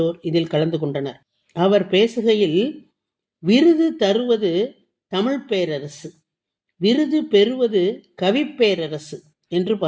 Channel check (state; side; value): identical; both; correlation 1.00